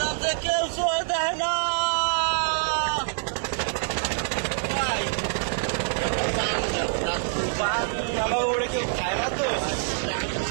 যে কেউ ছয় দেয় না। আমার ওরে কেউ খায় না তো।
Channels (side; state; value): left; silent; digital silence